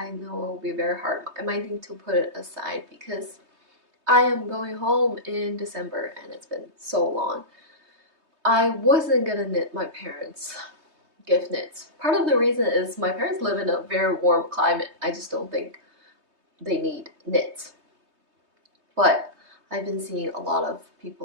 know it will be very hard, I might need to put it aside because I am going home in December and it's been so long. I wasn't gonna knit my parents' gift knits. Part of the reason is my parents live in a very warm climate. I just don't think they need knits. But I've been seeing a lot of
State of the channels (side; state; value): left; late; 3.2 ms